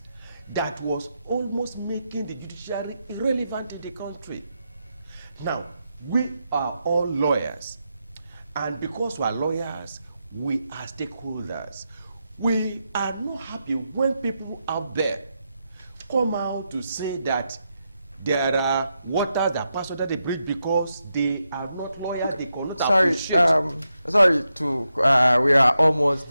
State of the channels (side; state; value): both; inverted; correlation -0.86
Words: that was almost making the judiciary irrelevant in the country. Now, we are all lawyers, and because we are lawyers, we are stakeholders. We are not happy when people out there come out to say that there are waters that pass under the bridge because they are not lawyers, they cannot appreciate. Sorry we are almost